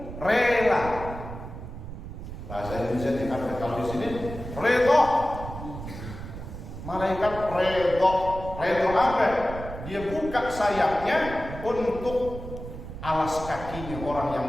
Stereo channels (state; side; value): noise; right; rumble, 10 dB below the sound